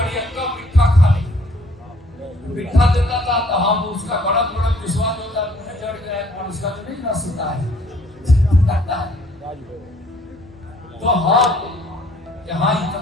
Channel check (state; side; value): normal; both; correlation 0.60